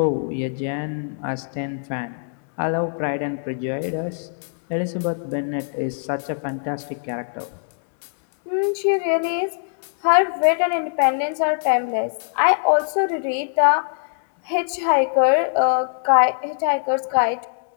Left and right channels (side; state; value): right; silent; 64 dB below the other